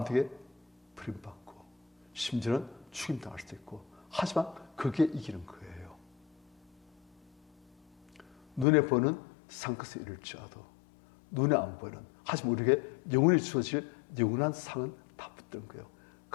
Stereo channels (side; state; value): right; drops out; at 8.7 s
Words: 버림받고 심지어는 죽임당할 수도 있고, 하지만 그게 이기는 거예요. 눈에 보는 상것에 이를지라도 눈에 안 보이는, 하지만 우리에게 영원히 주어질 영원한 상은 다 붙드는 거예요.